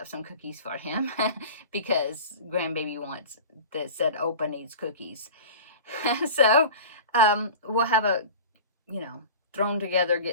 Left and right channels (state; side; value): inverted; both; correlation -0.37